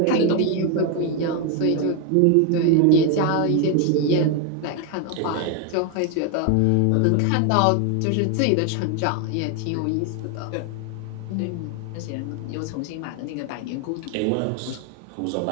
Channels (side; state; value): both; different; correlation 0.01